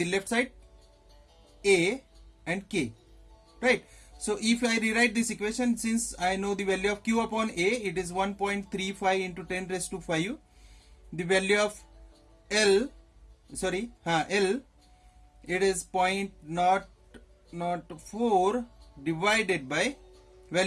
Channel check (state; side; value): identical; both; correlation 1.00